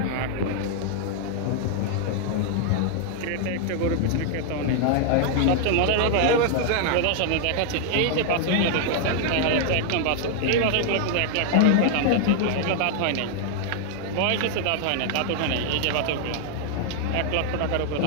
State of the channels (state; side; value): different; both; correlation 0.00